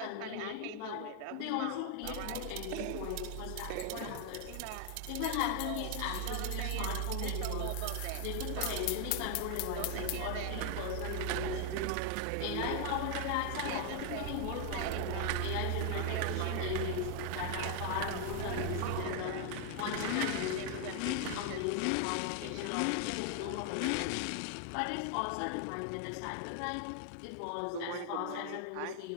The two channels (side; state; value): both; different; correlation 0.00